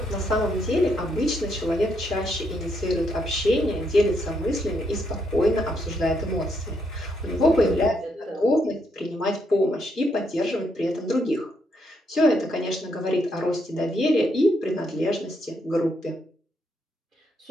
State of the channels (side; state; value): both; normal; correlation 0.76